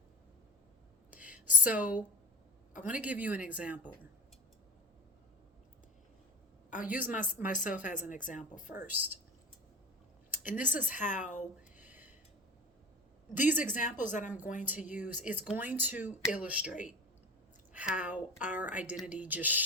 So I want to give you an example. I'll use myself as an example first. And this is how these examples that I'm going to use is going to illustrate how our identity just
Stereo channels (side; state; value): both; normal; correlation 0.36